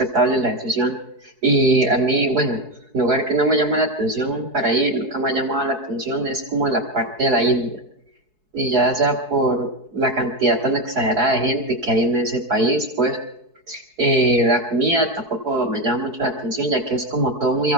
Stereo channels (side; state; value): left; late; 4.7 ms